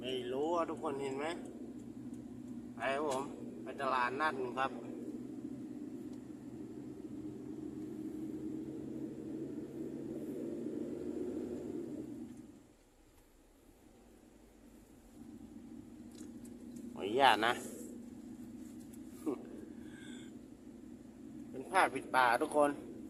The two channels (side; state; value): both; identical; correlation 1.00